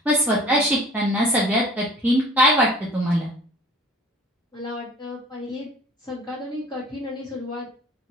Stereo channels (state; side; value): normal; both; correlation 0.47